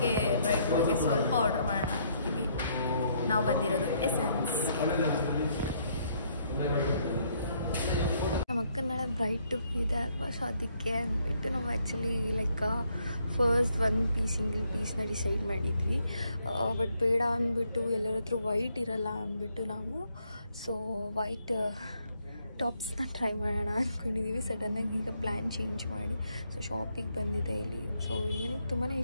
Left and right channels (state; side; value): inverted; both; correlation -0.71